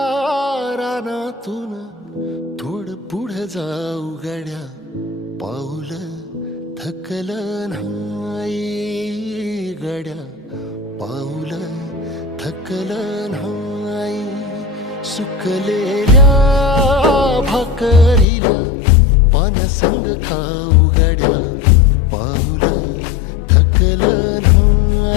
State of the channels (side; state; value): right; drops out; at 18.2 s